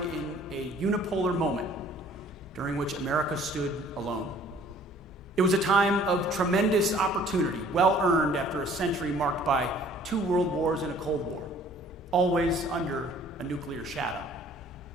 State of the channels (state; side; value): normal; both; correlation 0.55